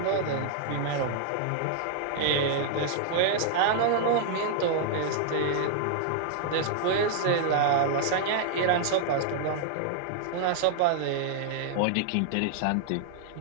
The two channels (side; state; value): both; different; correlation -0.01